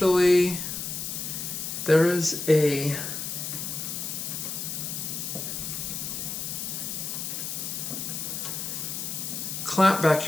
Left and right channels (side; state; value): left; noise; hiss, 4 dB below the sound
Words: there is a clamp back